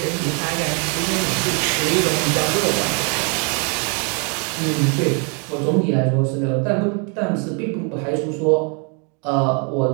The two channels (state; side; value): quieter; left; 36.9 dB